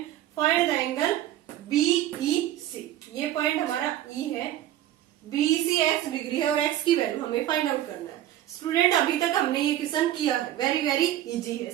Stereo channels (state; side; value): quieter; left; 13.0 dB